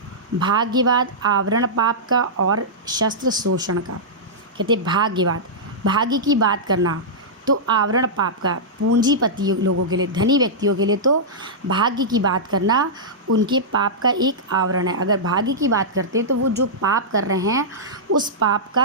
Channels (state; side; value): normal; both; correlation -0.12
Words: भाग्यवाद आवरण पाप का और शस्त्र शोषण का। कहते भाग्यवाद, भाग्य की बात करना तो आवरण पाप का, पूंजीपति लोगों के लिए, धनी व्यक्तियों के लिए तो भाग्य की बात करना उनके पाप का एक आवरण है। अगर भाग्य की बात करते हैं तो वो जो पाप कर रहे हैं उस पाप